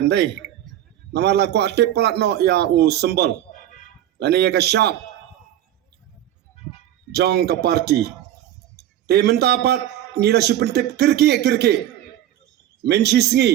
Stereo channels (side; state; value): left; quieter; 12.2 dB